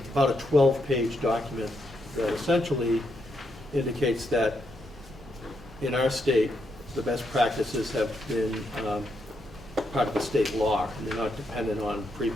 about a 12-page document that essentially indicates that in our state, the best practices have been part of the state law, and they're not dependent on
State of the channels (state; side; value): noise; left; hum, 26 dB below the sound